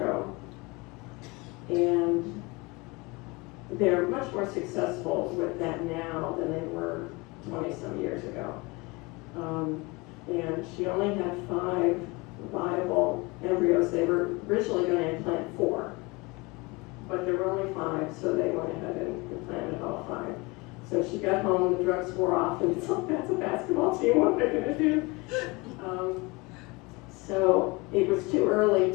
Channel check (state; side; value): quieter; right; 25.4 dB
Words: And they're much more successful with that now than they were 20-some years ago. And she only had 5 viable embryos. They were originally going to implant 4, but there were only 5, so they went ahead and implanted all 5. So she got home, the drugs wore off, and it's like, that's a basketball team, what am I going to do? So it was too early